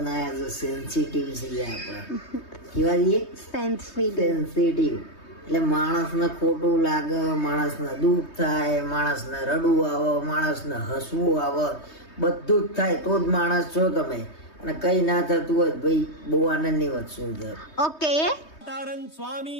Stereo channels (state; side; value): late; right; 3.2 ms